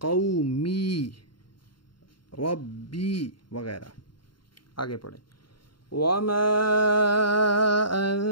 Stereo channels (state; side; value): late; right; 0.72 ms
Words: कौमी, रब्बी वगैरह। आगे पढ़ें। वमा